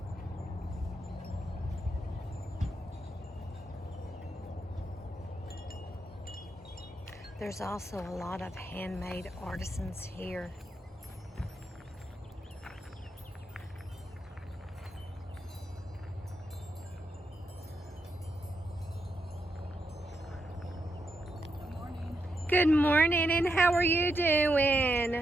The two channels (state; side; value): normal; both; correlation 0.83